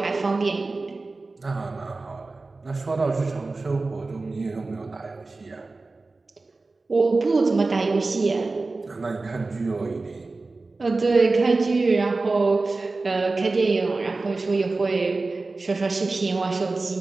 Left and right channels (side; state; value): left; quieter; 3.5 dB